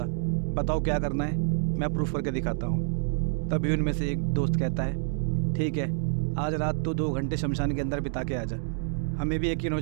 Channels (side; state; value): left; silent; digital silence